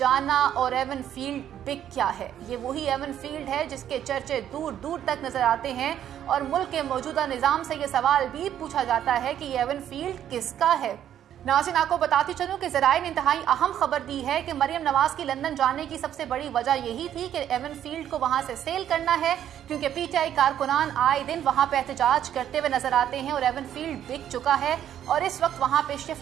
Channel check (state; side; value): quieter; left; 10.5 dB